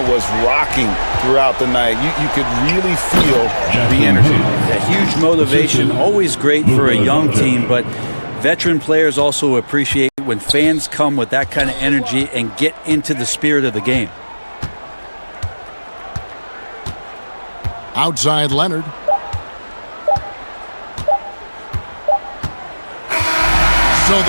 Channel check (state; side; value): inverted; both; correlation -1.00